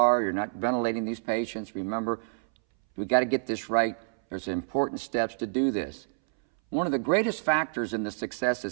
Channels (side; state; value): left; silent; 59 dB below the other